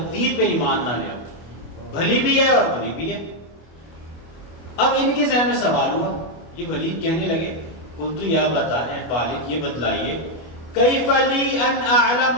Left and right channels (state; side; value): late; right; 25 ms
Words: پہ ایمان نہ لے آؤ، بھلی بھی ہے اور بری بھی ہے. اب ان کے ذہن میں سوال ہوا، یہ ولید کہنے لگے قلت یا بتا، اے والد یہ بتلائیے، کیف لی ان اعلم